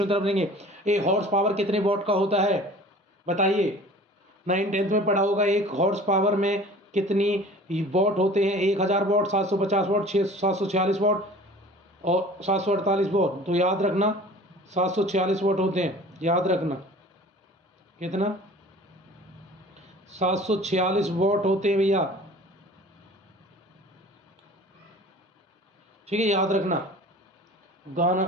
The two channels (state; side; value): normal; both; correlation 0.45